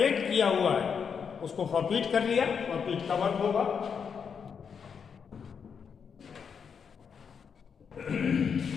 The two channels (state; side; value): quieter; right; 6.6 dB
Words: किया हुआ है उसको फॉरफिट कर लिया। फॉरफिट का वर्क होगा